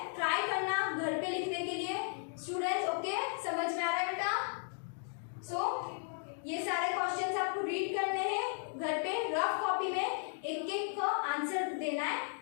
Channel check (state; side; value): silent; right; 54 dB below the other